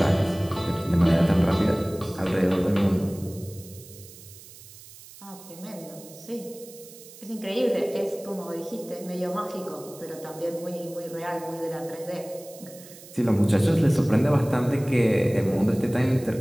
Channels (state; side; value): noise; right; hiss, 19 dB below the sound